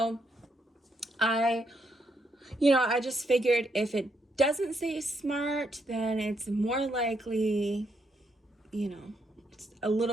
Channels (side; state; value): both; normal; correlation 0.77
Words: I just figured if it doesn't say smart, then it's more likely, it's a